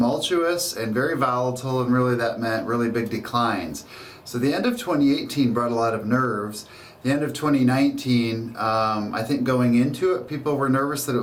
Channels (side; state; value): both; identical; correlation 1.00